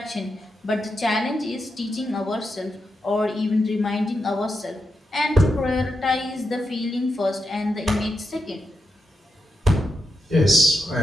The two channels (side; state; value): both; normal; correlation 0.85